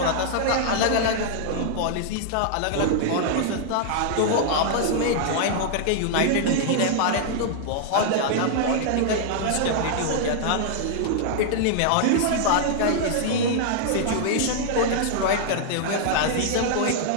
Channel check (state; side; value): different; both; correlation -0.01